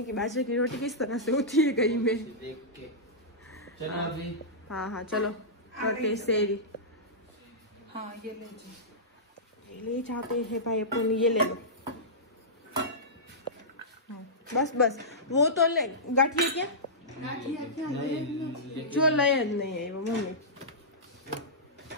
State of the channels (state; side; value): normal; both; correlation -0.15